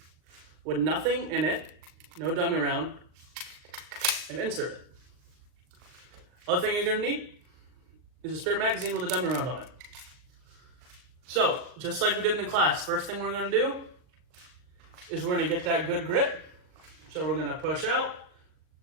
with nothing in it, no dummy round, and insert it. Other thing you're gonna need is a spare magazine with a dummy round on it. So, just like we did in the class, first thing we're gonna do is we're gonna get that good grip. So we're gonna push out,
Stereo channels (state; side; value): late; left; 39 ms